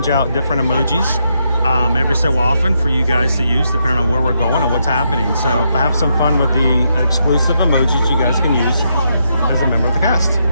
out different emojis every so often for you guys to use, depending on where we're going and what's happening. So have some fun with the exclusive emojis you guys can use as a member of the cast.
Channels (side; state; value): both; inverted; correlation -0.79